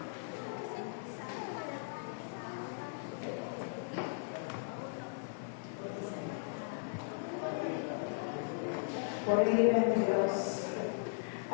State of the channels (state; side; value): silent; right; digital silence